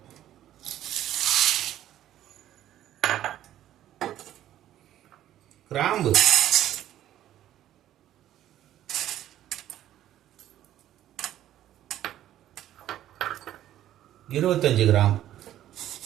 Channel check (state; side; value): quieter; left; 12.5 dB